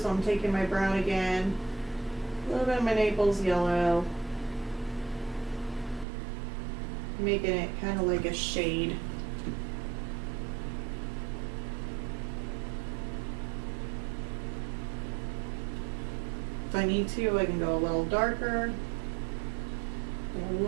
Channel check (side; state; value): left; drops out; at 6.1 s